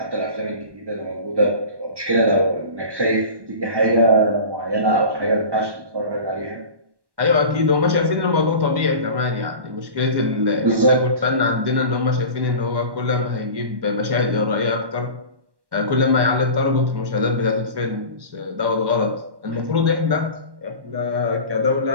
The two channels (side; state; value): left; late; 1.1 ms